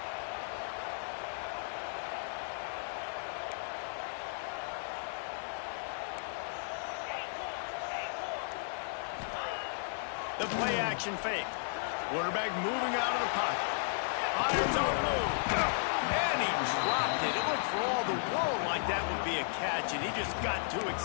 The play action fake. Quarterback moving out of the pocket. Fires on the move. And he dropped it. It looked for all the world like that would be a catch, and he just got too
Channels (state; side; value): silent; right; digital silence